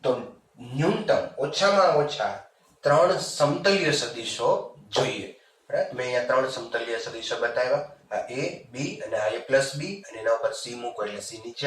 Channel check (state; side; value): identical; both; correlation 1.00